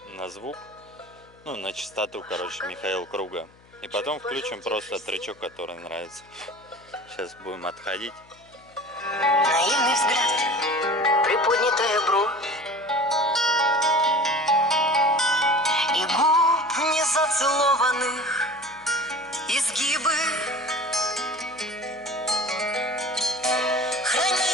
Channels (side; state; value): left; noise; hum, 28 dB below the sound